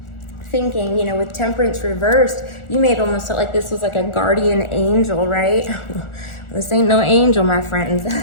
thinking, you know, with Temperance reversed, you may have almost felt like this was like a guardian angel, right? This ain't no angel, my friends.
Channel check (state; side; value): late; right; 1.4 ms